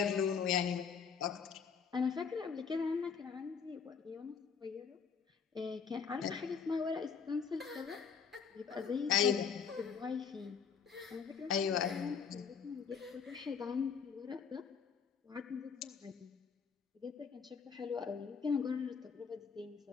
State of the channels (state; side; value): quieter; right; 6.3 dB